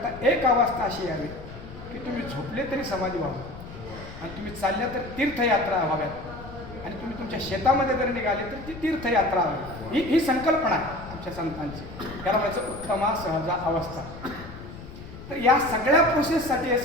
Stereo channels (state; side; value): noise; left; rumble, 13 dB below the sound